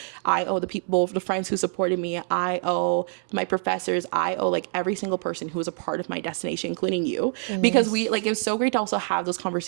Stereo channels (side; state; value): left; silent; 61 dB below the other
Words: I owe the friends who supported me. I owe my professors. I owe like every single person who was a part of my destination, including you, because we like, it was so great to also have those